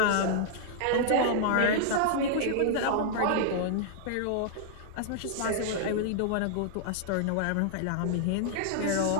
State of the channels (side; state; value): both; different; correlation -0.01